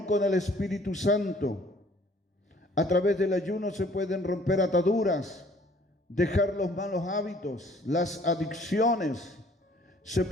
con el Espíritu Santo. A través del ayuno se pueden romper ataduras, dejar los malos hábitos, las adicciones. Se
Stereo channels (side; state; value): both; normal; correlation 0.57